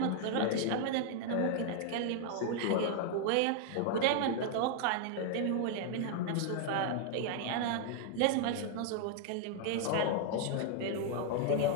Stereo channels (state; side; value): different; both; correlation 0.00